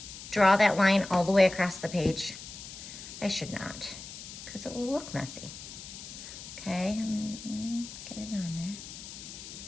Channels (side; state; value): left; noise; hiss, 12 dB below the sound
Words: draw that line all the way across the page? I should not, because it will look messy. Okay, get it on there.